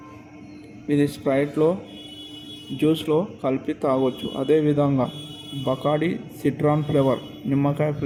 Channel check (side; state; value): both; identical; correlation 1.00